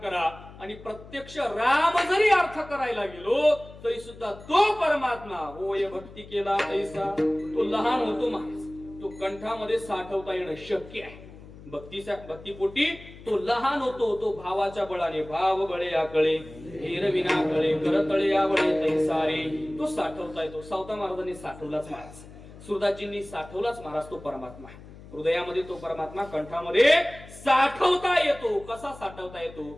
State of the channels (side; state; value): left; noise; hum, 18 dB below the sound